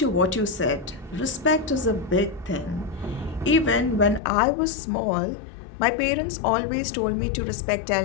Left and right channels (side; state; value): right; drops out; at 4.2 s